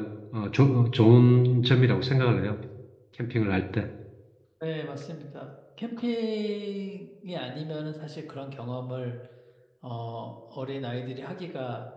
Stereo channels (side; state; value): both; identical; correlation 1.00